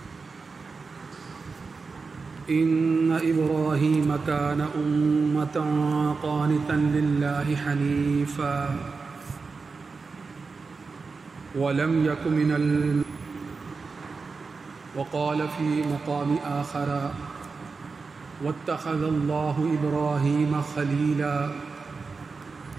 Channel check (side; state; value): left; quieter; 4.5 dB